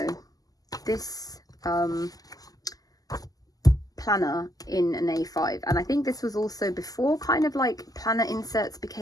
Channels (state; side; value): late; right; 0.17 ms